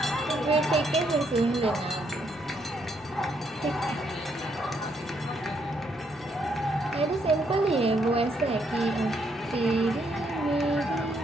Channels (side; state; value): both; normal; correlation 0.74